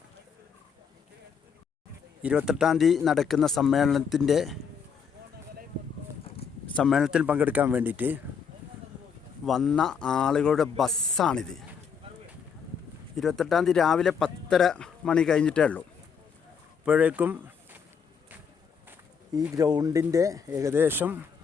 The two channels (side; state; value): right; quieter; 6.6 dB